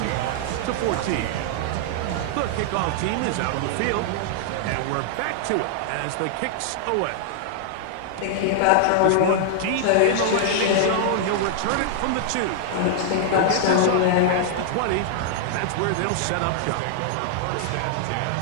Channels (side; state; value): both; different; correlation -0.01